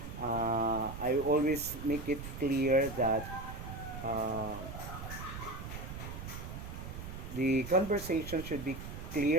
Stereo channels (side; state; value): right; noise; rumble, 9 dB below the sound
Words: I always make it clear that uh, the conversation should be